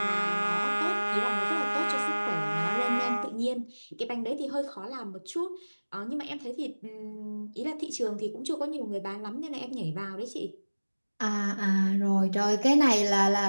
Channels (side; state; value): both; inverted; correlation -1.00